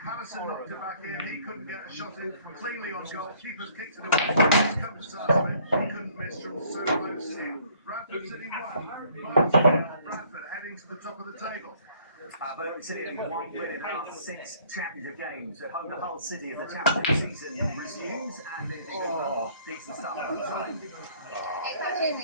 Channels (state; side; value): inverted; both; correlation -0.59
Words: Harrison knocked it back in, he couldn't get a shot in cleanly on goal. Keeper's kicked it away, he's come to Sarsfield, he couldn't miss from so close in. Bradford City 1, Bradford heading to the top of the table. Birmingham City have won win in our 6 championship games. At home, the whole city as the championship season resumes, and it's a decent start on the side. It's